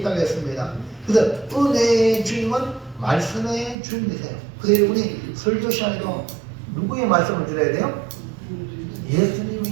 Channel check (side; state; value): left; drops out; at 3.8 s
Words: 했습니다. 그래서 은혜의 주님은 말씀의 주님이세요. 그래서 여러분이 설교 시간에도 누구의 말씀을 들어야 돼요?